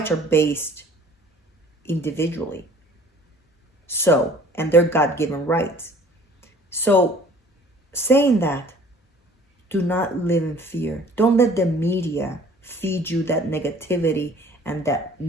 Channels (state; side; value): normal; both; correlation 0.51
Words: are based individually. So, and they're God-given rights. So, saying that, do not live in fear. Don't let the media feed you that negativity and that